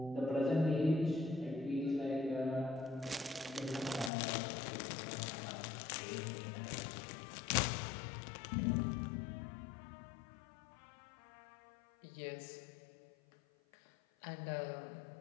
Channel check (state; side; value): drops out; right; at 4.1 s